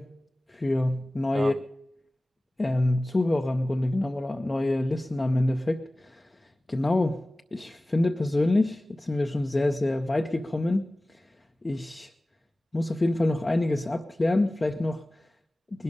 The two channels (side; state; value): both; normal; correlation 0.97